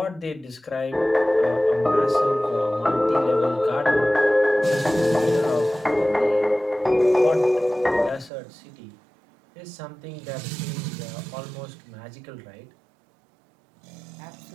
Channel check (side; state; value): left; drops out; at 8.3 s